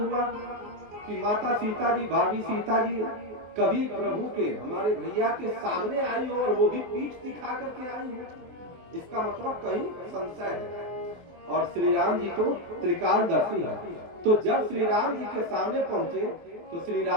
कि माता सीता जी, भाभी सीता जी कभी प्रभु के, हमारे भैया के सामने आई हो और वो भी पीठ दिखा करके आई हो। इसका मतलब कहीं संशय है। और श्री राम जी तो त्रिकालदर्शी है। तो जब श्री राम जी के सामने पहुंचे तो श्री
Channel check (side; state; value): left; late; 24 ms